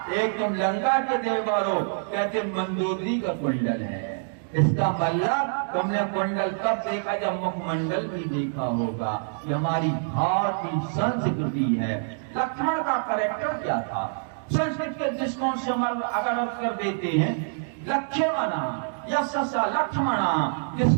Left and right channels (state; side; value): silent; left; digital silence